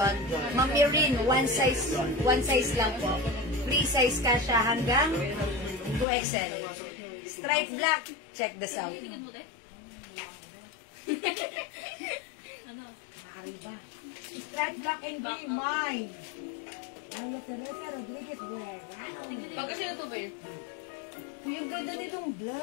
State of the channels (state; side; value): drops out; right; at 6.1 s